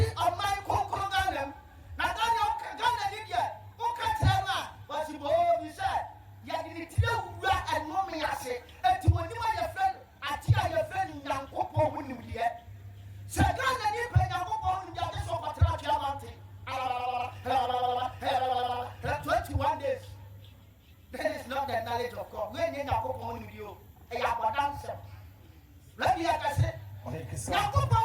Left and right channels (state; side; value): identical; both; correlation 1.00